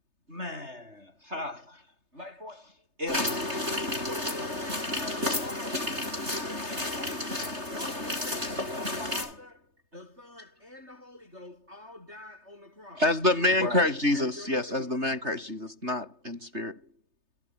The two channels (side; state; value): left; late; 3.3 ms